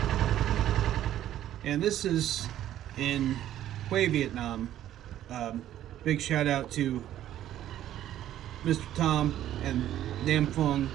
And this is in Hue, Vietnam. Big shout out to Mr. Tom and Nam Phuong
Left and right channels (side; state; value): left; quieter; 12.2 dB